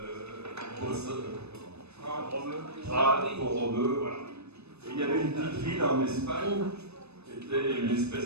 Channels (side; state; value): left; late; 0.80 ms